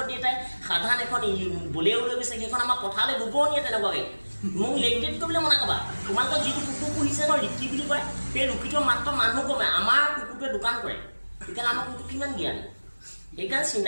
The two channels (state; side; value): inverted; both; correlation -1.00